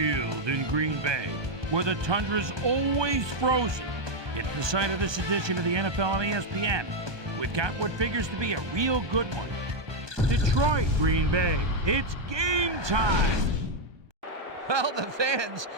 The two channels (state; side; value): late; left; 1.2 ms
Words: in Green Bay, where the tundra's always frozen. It's the site of this edition of the NFL on ESPN. We've got what figures to be a real good one. Detroit, Green Bay. It's game time. Well, the fans